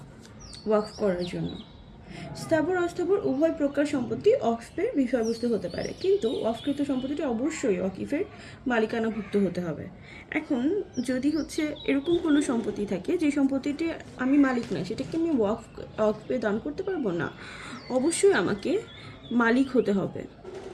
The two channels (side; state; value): both; identical; correlation 1.00